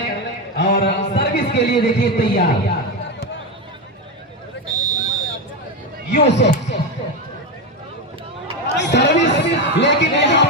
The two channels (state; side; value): normal; both; correlation 0.13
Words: और सर्विस के लिए देखिए तैयार यूसुफ सर्विस लेकिन यहाँ